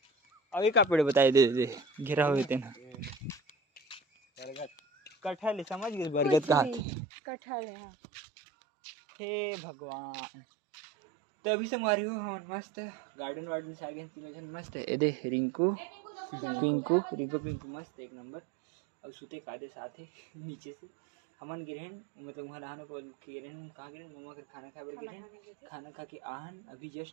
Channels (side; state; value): left; drops out; at 6.9 s